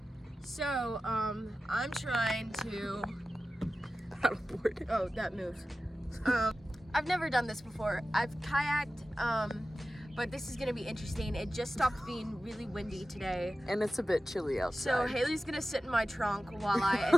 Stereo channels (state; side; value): normal; both; correlation 0.94